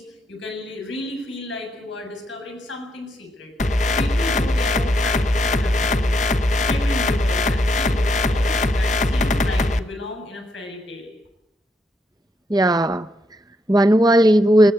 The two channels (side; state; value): both; normal; correlation 0.78